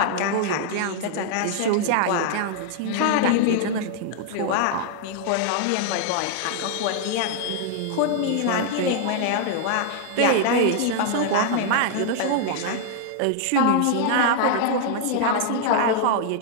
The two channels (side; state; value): both; different; correlation 0.00